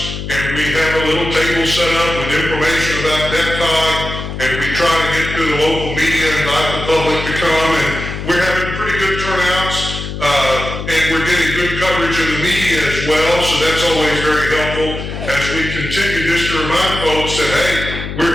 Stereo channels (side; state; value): left; noise; hum, 7 dB below the sound